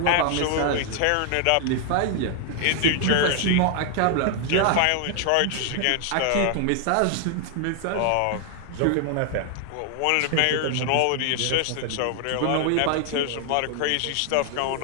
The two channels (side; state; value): both; different; correlation 0.00